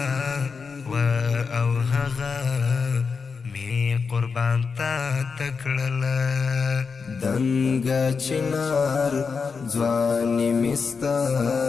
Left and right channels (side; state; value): right; quieter; 5.3 dB